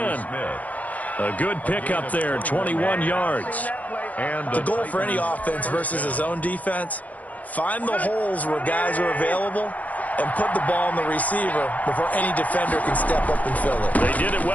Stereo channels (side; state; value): right; late; 0.075 ms